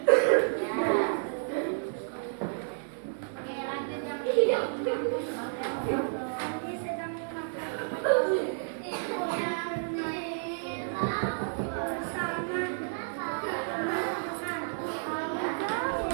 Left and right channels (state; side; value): silent; left; digital silence